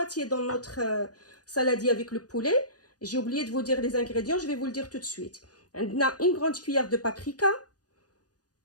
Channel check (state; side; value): late; right; 0.68 ms